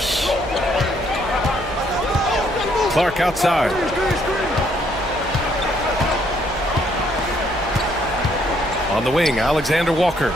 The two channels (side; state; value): right; noise; hum, 15 dB below the sound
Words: Clark outside. On the wing, Alexander Walker.